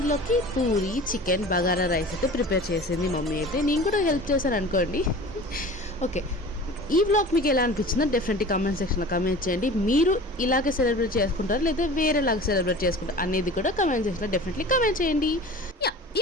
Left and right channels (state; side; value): normal; both; correlation 0.39